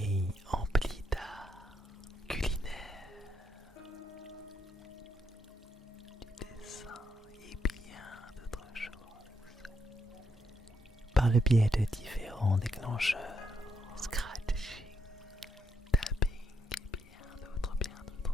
empli d'art culinaire, du dessin et bien d'autres choses, par le biais de différents déclencheurs, scratching, tapping et bien d'autres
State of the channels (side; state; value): both; normal; correlation 0.78